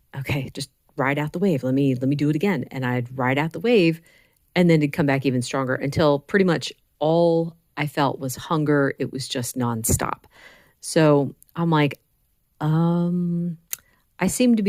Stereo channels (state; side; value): identical; both; correlation 1.00